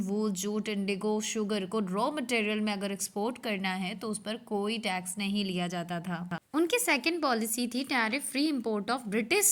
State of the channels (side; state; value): both; identical; correlation 1.00